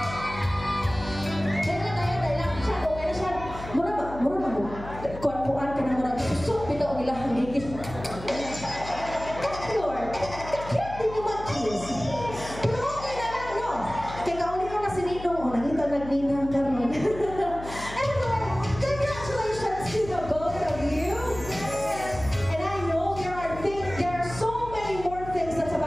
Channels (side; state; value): left; noise; hum, 13 dB below the sound